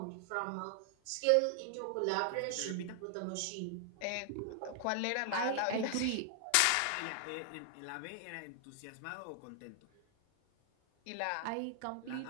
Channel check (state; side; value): different; both; correlation 0.00